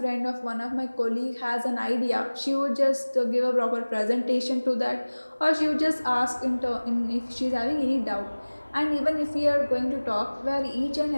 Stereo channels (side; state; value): both; inverted; correlation -1.00